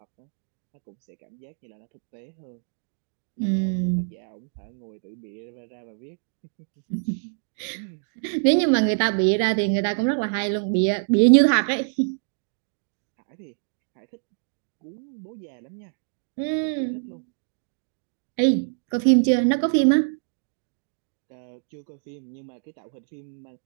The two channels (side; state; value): left; silent; digital silence